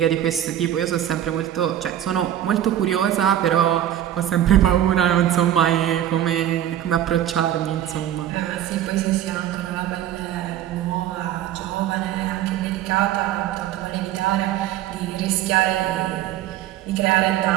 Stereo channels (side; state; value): left; quieter; 11.6 dB